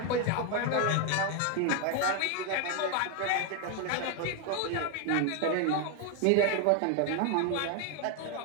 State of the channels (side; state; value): both; different; correlation 0.01